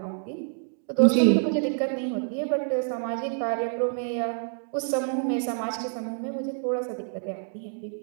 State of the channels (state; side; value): silent; left; 60 dB below the other